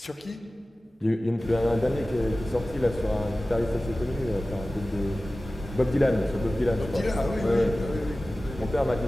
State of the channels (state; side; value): normal; both; correlation 0.96